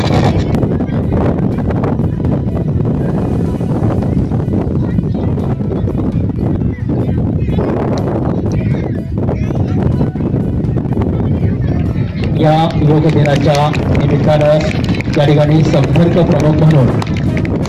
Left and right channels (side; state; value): both; identical; correlation 1.00